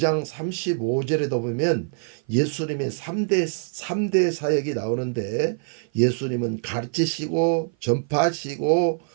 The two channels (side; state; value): left; silent; 56 dB below the other